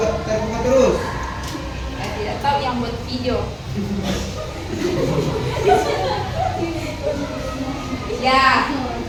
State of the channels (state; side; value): identical; both; correlation 1.00